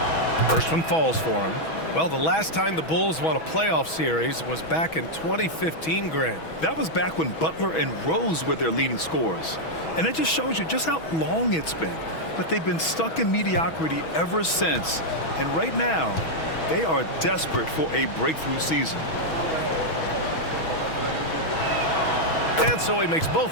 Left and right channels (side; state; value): right; late; 6.2 ms